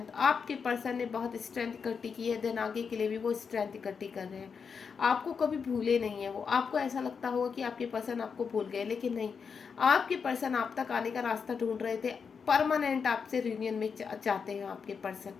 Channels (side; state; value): right; quieter; 6.0 dB